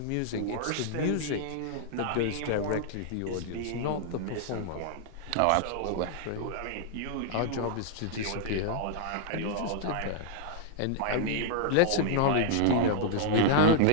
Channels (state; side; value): different; both; correlation -0.01